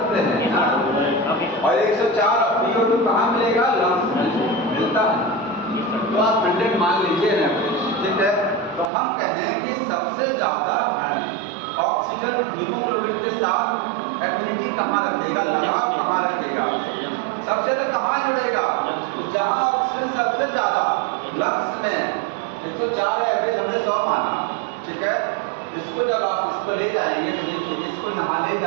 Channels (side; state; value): left; drops out; at 8.9 s